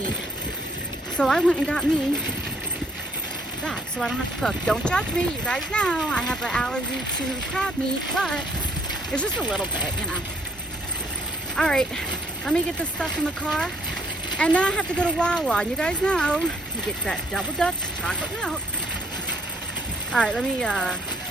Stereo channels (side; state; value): both; normal; correlation 0.66